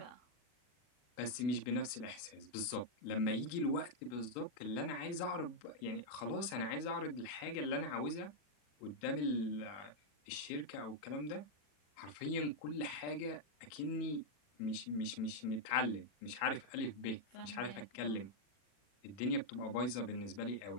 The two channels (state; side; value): late; right; 40 ms